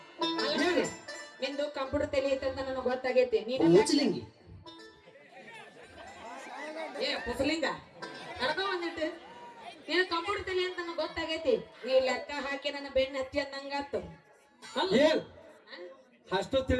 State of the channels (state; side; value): identical; both; correlation 1.00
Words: ನಿಂದು ಕಂಪ್ಯೂಟರ್ ತಲಿ ಐತಂತ ನನಗೆ ಗೊತ್ತಾಗೈತಿ. ನೀನು ಕುಸಲಿಂಗ ಕಡ್ಕೊ ಬಂದಿಟ್ಟು ನೀನು ಕಂಪ್ಯೂಟರ್ ತಲಿ ಅಂತ ನನಗೆ ಗೊತ್ತಾಗೈತಿ. ನೀ ಲೆಕ್ಕ ಹಾಕಿ ನನ್ನ ಬೆನ್ನ ಹತ್ತಿ ಅನ್ನಂಗಾತು. ಏನ್ ಅಷ್ಟು